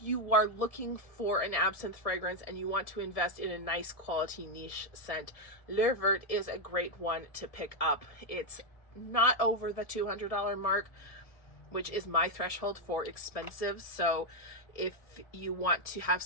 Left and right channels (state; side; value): late; right; 1.7 ms